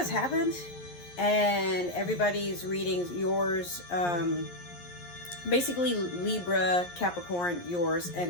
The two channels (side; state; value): right; late; 11 ms